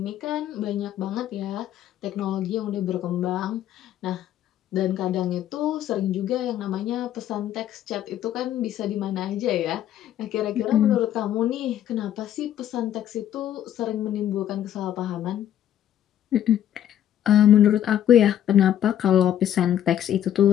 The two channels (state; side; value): quieter; right; 11.1 dB